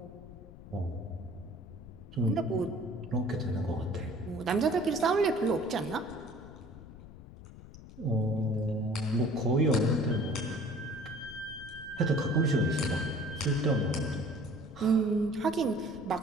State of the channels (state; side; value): noise; left; rumble, 17 dB below the sound